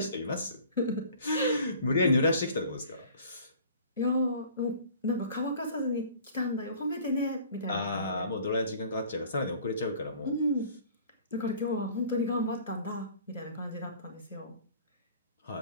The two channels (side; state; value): both; inverted; correlation -0.49